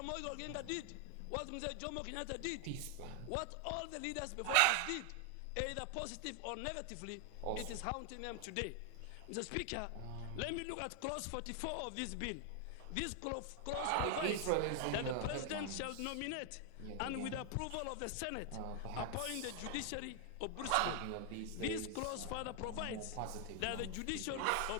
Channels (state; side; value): different; both; correlation 0.00